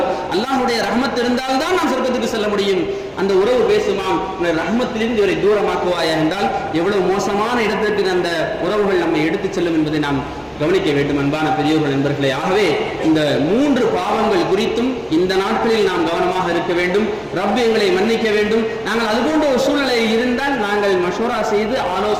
அல்லாஹ்வுடைய ரஹமத் இருந்தால்தான் நாம் சொர்க்கத்துக்கு செல்ல முடியும். அந்த உறவு பேசுமாம், ரஹமத்திலிருந்து இவரை தூரமாக்குவாயா என்றால் எவ்வளவு மோசமான இடத்திற்கு அந்த உறவுகள் நம்மை எடுத்துச் செல்லும் என்பதை நாம் கவனிக்க வேண்டும். அன்பான பெரியோர்கள், நண்பர்களே, ஆகவே இந்த 3 பாவங்கள் குறித்தும் இந்த நாட்களில் நாம் கவனமாக இருக்க வேண்டும். ரப் எங்களை மன்னிக்க வேண்டும். நாங்கள் அதுபோன்ற ஒரு சூழ்நிலையில் இருந்தால் நாங்கள் மஷூரா செய்து,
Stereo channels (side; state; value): both; identical; correlation 1.00